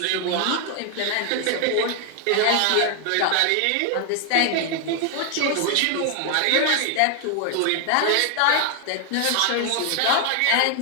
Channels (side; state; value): both; different; correlation 0.00